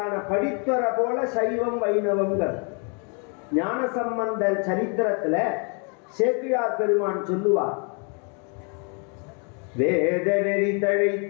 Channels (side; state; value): right; quieter; 37.9 dB